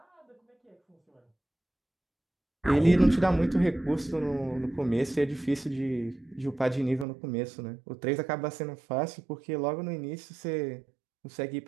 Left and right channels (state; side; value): drops out; left; at 7.1 s